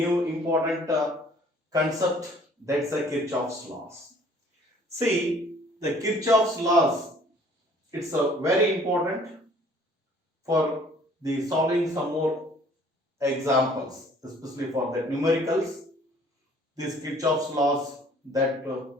important concept, that's the Kirchhoff's laws. See, the Kirchhoff's laws, it's very important for the solving some more examples, especially for the numericals. These Kirchhoff's laws that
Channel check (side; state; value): both; normal; correlation 0.55